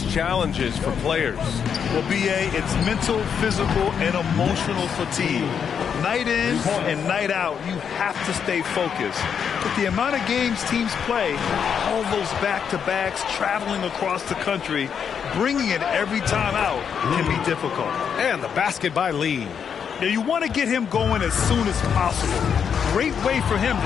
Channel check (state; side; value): quieter; right; 7.4 dB